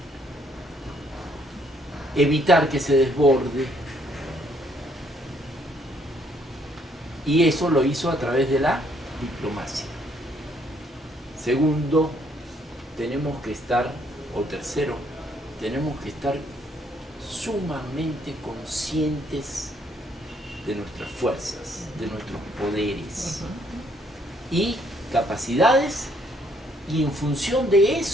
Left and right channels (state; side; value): normal; both; correlation 0.68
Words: evitar que se desborde. Y eso lo hizo a través de la diplomacia. Segundo, tenemos que estar, o tercero, tenemos que estar sumamente conscientes de nuestras fuerzas, de nuestros poderes y capacidades, y en función de